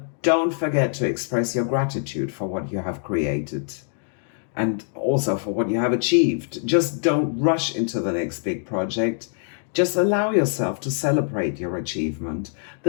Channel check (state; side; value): silent; right; 63 dB below the other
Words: don't forget to express your gratitude for what you have created and also for what you have achieved. Just don't rush into the next big project. Just allow yourself to celebrate your achievement.